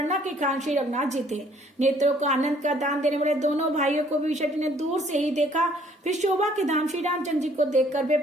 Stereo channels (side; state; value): both; normal; correlation 0.61